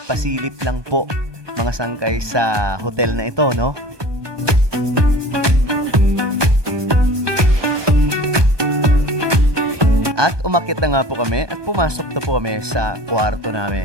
pasilip lang po mga sangkay sa hotel na ito, no? At umakyat na nga po kami at pumasok na po kami sa kwarto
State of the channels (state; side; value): late; left; 1.2 ms